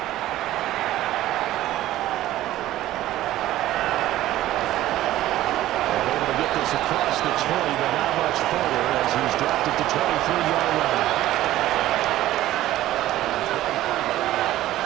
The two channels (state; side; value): quieter; left; 14.6 dB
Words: Across the 20, but not much further as he's dropped it to 23-yard line.